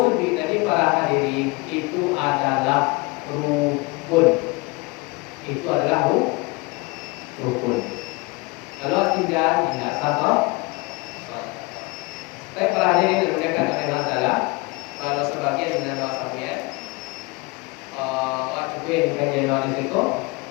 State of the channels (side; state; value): right; quieter; 25.8 dB